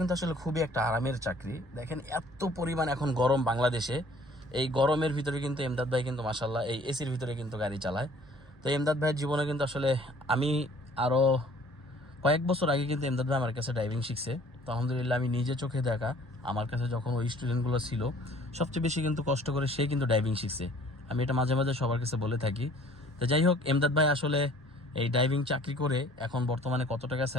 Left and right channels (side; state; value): both; normal; correlation 0.54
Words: আসলে খুবই একটা আরামের চাকরি। দেখেন এত পরিমাণ এখন গরম বাংলাদেশে, এই গরমের ভিতরে কিন্তু এমদাদ ভাই কিন্তু মাশাল্লাহ এই এসির ভিতরে কিন্তু গাড়ি চালায়। তো এমদাদ ভাইয়ের জীবনে কিন্তু আসলে আমি আরও কয়েক বছর আগে কিন্তু এমদাদ ভাই আমার কাছে ড্রাইভিং শিখছে। তো আলহামদুলিল্লাহ, আমি নিজে চোখে দেখা, আমার কাছে যখন ওই স্টুডেন্টগুলো ছিল সবচেয়ে বেশি কিন্তু কষ্ট করে সে কিন্তু ড্রাইভিং শিখছে। আমি এটা মাঝে মাঝে সবার কাছে বলে থাকি। তো যাই হোক, এমদাদ ভাই আসলে এই ড্রাইভিং চাকরি করে এখন বর্তমানে কত টাকা